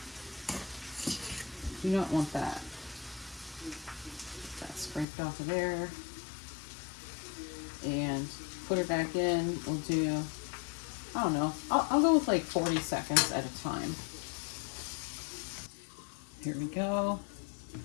You don't want that. Get that scraped off of there. And put it back in. We'll do, I don't know, I'll go with like 40 seconds at a time. Here we go.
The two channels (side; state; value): right; drops out; at 5.1 s